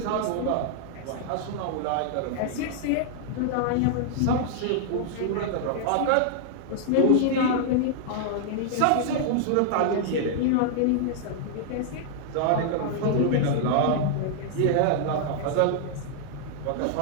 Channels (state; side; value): different; both; correlation -0.01